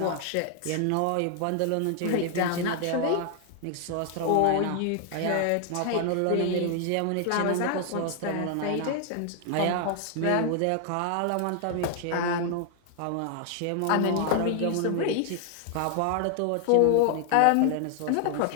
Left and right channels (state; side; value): different; both; correlation 0.00